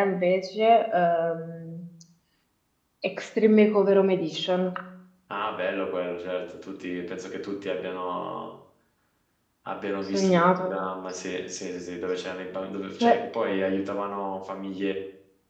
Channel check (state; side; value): identical; both; correlation 1.00